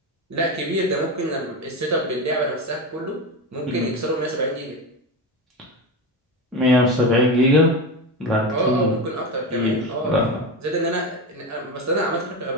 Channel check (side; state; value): both; normal; correlation 0.20